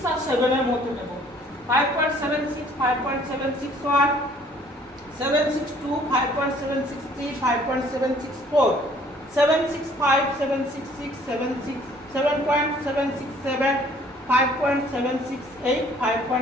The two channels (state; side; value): normal; both; correlation 0.58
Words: আর 7 এর মধ্যে নেব। 5.76 5.761 762 5.763 5.764 765 766 7.767 5.768,